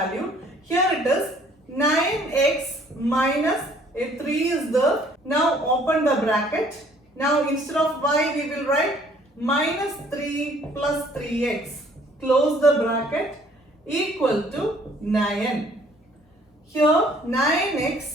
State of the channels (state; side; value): normal; both; correlation 0.59